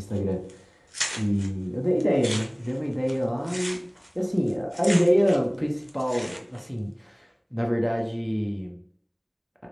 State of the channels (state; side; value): identical; both; correlation 1.00